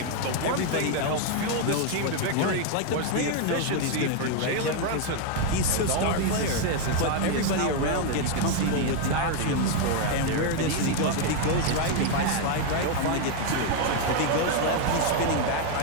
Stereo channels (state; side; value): different; both; correlation 0.01